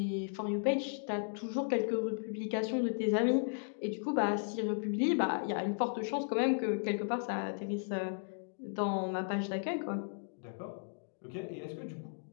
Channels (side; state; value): right; silent; digital silence